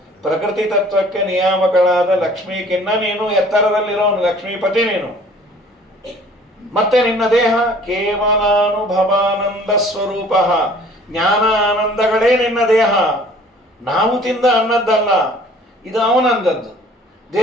ಪ್ರಕೃತಿ ತತ್ವಕ್ಕೆ ನಿಯಾಮಕಳಾದ ಲಕ್ಷ್ಮೀಕಿನ್ನ ನೀನು ಎತ್ತರದಲ್ಲಿರೋನು, ಲಕ್ಷ್ಮೀಪತಿ ನೀನು. ಮತ್ತೆ ನಿನ್ನ ದೇಹ ಕೇವಲಾನುಭವಾನಂದ ಸ್ವರೂಪ, ಜ್ಞಾನ ಆನಂದಗಳೇ ನಿನ್ನ ದೇಹ. ನಾವು ತಿಂದ ಅನ್ನದ್ದಲ್ಲ, ಇದು ಅವನಂದದ್ದು.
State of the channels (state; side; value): normal; both; correlation 0.52